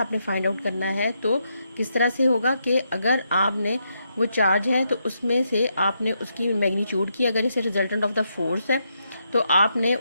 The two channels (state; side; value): inverted; both; correlation -0.80